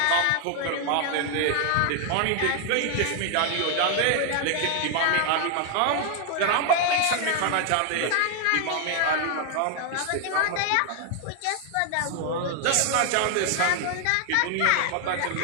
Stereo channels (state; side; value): different; both; correlation 0.00